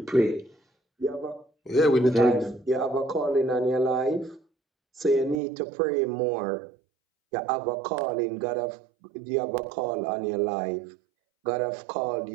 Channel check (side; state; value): left; drops out; at 5.4 s